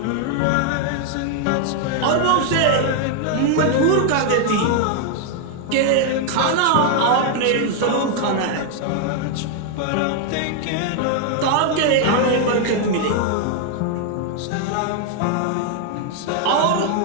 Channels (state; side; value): different; both; correlation 0.00